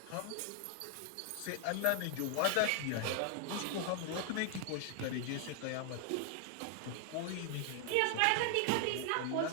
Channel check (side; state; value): both; different; correlation 0.00